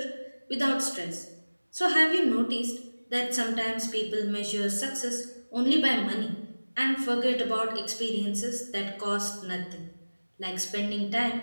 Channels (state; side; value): inverted; both; correlation -1.00